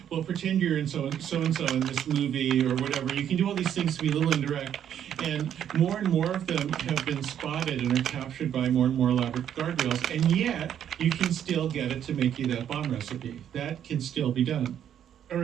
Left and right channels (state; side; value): quieter; left; 9.7 dB